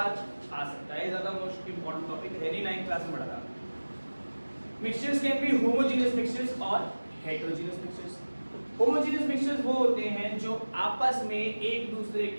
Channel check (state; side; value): inverted; both; correlation -1.00